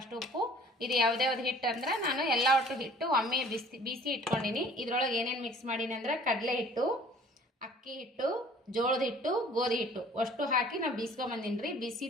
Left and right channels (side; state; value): both; normal; correlation 0.52